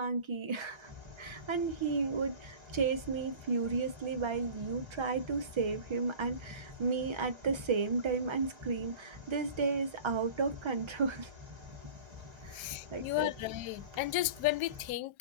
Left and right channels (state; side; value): late; left; 1.3 ms